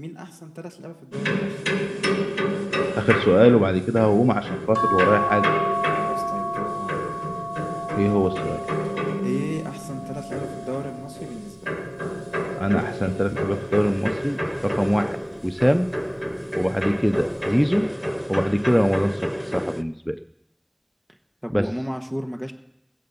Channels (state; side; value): identical; both; correlation 1.00